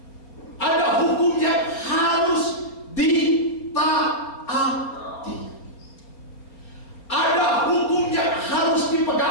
Ada hukum yang harus ditaati. Ada hukum yang harus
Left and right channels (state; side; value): late; right; 4.4 ms